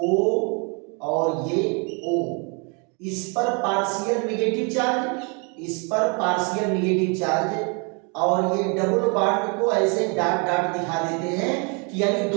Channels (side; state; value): left; quieter; 34.6 dB